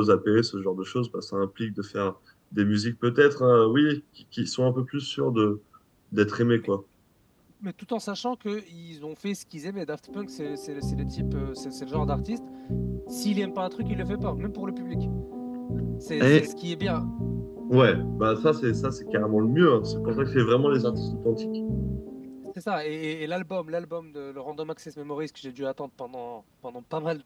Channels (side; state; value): both; identical; correlation 1.00